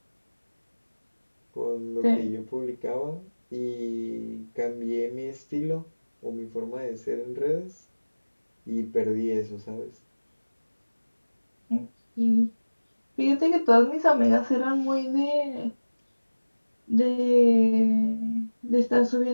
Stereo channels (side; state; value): both; inverted; correlation -1.00